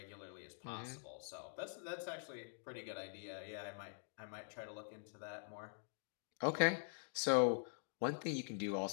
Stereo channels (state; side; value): silent; right; digital silence